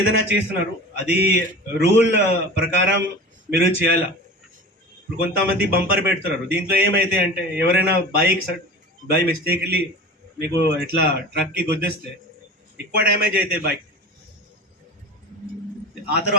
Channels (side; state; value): both; normal; correlation 0.34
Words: ఏదైనా చేస్తున్నారు అది రూల్ ప్రకారం మీరు చేయాలా. ఇప్పుడు కొంతమంది బంపర్ పెడుతున్నారు, దీంట్లో ఏమైతే అంటే ఎవరైనా బై మిస్టేక్లీ మీకు ఇట్లా ట్రక్కి గుద్దేస్తే ఎక్కువ డ్యామేజ్ అవుతాయి బైక్. ఆ